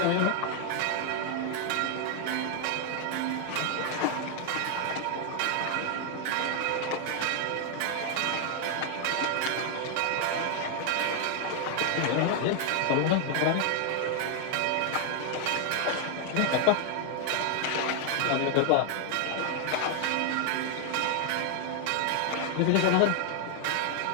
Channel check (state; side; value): different; both; correlation 0.00